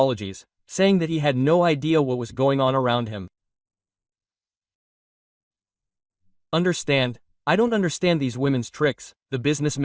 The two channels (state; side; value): identical; both; correlation 1.00